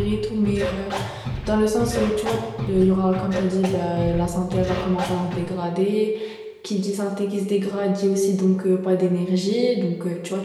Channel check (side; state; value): both; identical; correlation 1.00